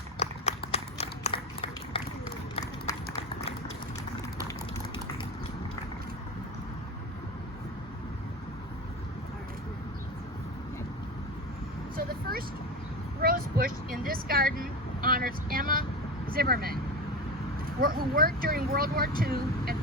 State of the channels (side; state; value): both; normal; correlation 0.23